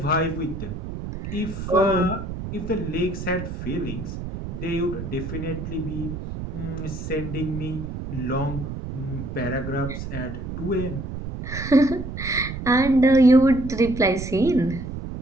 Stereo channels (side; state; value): right; noise; rumble, 7 dB below the sound